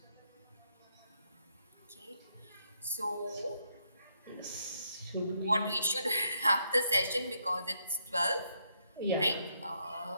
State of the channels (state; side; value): inverted; both; correlation -0.76